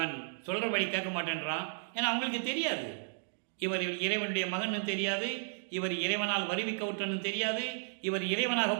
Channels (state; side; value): silent; left; digital silence